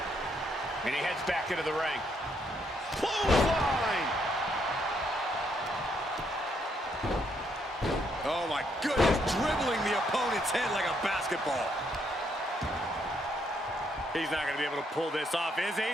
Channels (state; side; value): normal; both; correlation 0.74